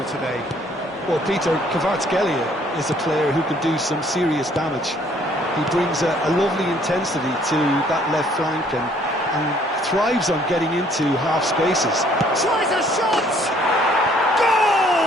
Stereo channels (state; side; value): normal; both; correlation 0.61